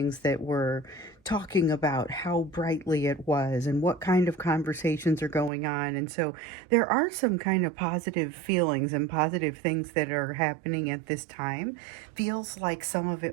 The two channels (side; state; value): left; drops out; at 5.5 s